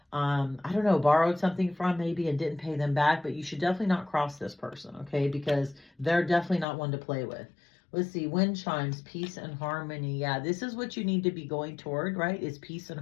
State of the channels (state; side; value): drops out; right; at 6.7 s